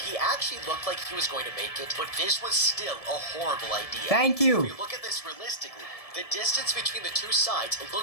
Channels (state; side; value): late; right; 1.7 ms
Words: he actually looked like he was going to make it, but this was still a horrible idea. Thank you. If you look at this realistically, The distance between the two sides